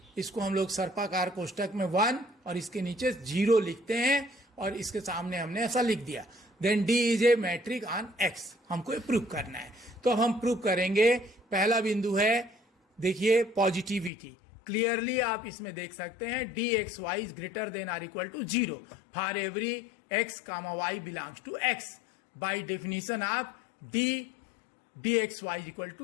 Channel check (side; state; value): right; drops out; at 14.1 s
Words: इसको हम लोग सर्पाकार कोष्टक में 1 और इसके नीचे 0 लिखते हैं और इसके सामने हमने ऐसा लिख दिया। Then d is a metric on x, हमको प्रूव करना है। तो अब हम प्रूव करेंगे। पहला बिंदु है देखिए पॉजिटिविटी, क्लियरली आप इसमें देख सकते हैं d x y is greater than or equal to 0 for every x comma y belongs to x। By definition of d x y equal